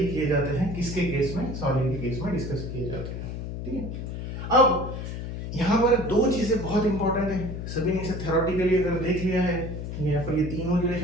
किए जाते हैं, किसके केस में, सॉलिड के केस में डिस्कस किए जाते हैं। ठीक है, अब यहाँ पर दो चीजें बहुत इंपॉर्टेंट है, सभी ने इसे थ्योरेटिकली अगर देख लिया है, यहाँ पर ये तीनों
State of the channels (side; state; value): left; noise; hum, 6 dB below the sound